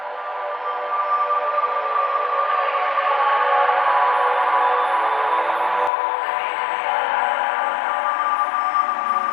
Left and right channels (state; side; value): drops out; right; at 5.9 s